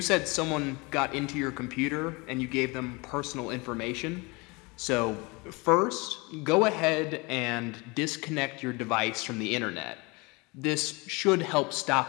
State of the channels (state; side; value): quieter; right; 26.6 dB